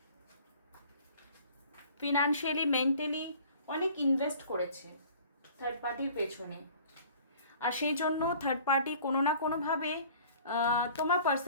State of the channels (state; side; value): inverted; both; correlation -0.49